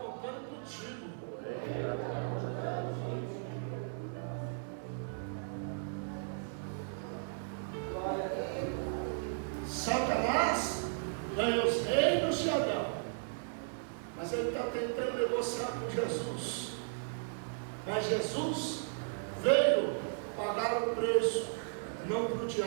contigo. Satanás ganha os reinos de Adão, mas ele está tentando negociar com Jesus Mas Jesus veio pagar o preço, não para o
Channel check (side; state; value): left; silent; digital silence